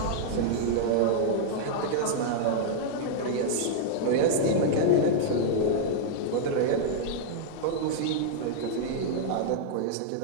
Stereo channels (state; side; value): different; both; correlation -0.01